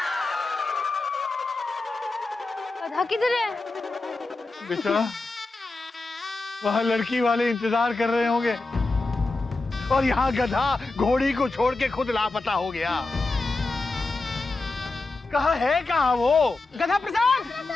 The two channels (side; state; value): right; quieter; 3.4 dB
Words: गधा किधर है? बेटा वहाँ लड़की वाले इंतजार कर रहे होंगे और यहाँ गधा घोड़ी को छोड़ के खुद लापता हो गया। कहाँ है कहाँ वो? गधा प्रसाद,